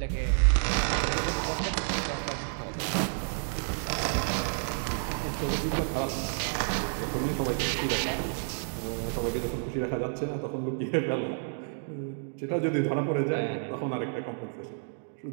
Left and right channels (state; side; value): silent; left; digital silence